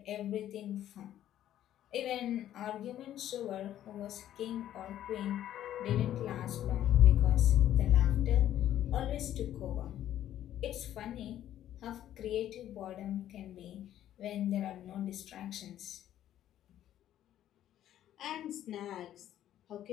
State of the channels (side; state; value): right; quieter; 11.9 dB